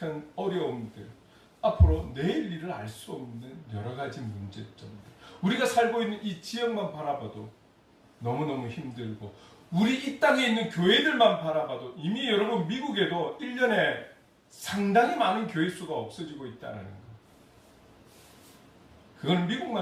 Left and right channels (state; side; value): identical; both; correlation 1.00